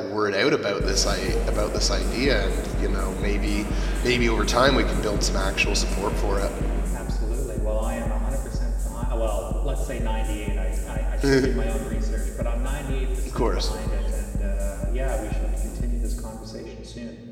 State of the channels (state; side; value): identical; both; correlation 1.00